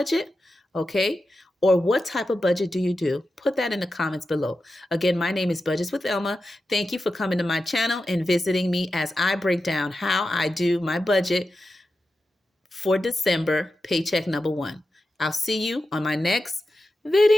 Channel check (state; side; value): normal; both; correlation 0.91